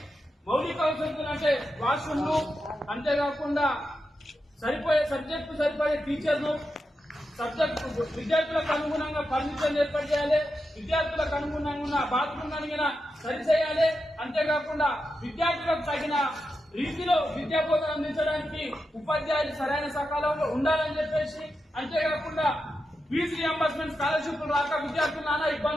మౌలిక వసతులు అంటే వాష్రూమ్లు, అంతేకాకుండా సబ్జెక్టు సరిపోయే టీచర్లు, సబ్జెక్టు విద్యార్థులకు అనుగుణంగా ఫర్నిచర్ ఏర్పాటు చేయాలి, విద్యార్థులకు అనుగుణంగా బాత్రూమ్ అడిగిన సరిచేయాలి, అంతేకాకుండా విద్యార్థులకు తగిన రీతిలో విద్యా బోధన అందించడానికి ఉపాధ్యాయులు సరైన సకాలంలో ఉండాలని చెప్పేసి, అంతేకాకుండా ఫీజు రియంబర్స్మెంట్ స్కాలర్షిప్లు రాక విద్యార్థులు నానా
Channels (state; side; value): normal; both; correlation 0.88